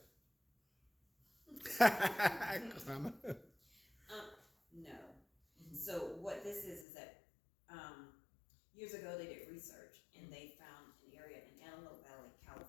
that? No. So what this is that years ago they did research and they found an area in Antelope Valley,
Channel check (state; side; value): drops out; right; at 6.9 s